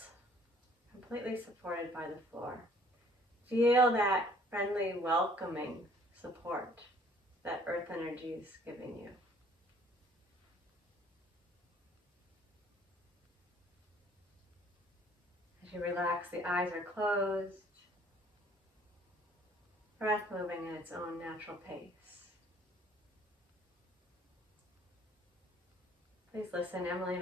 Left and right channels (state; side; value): normal; both; correlation 0.58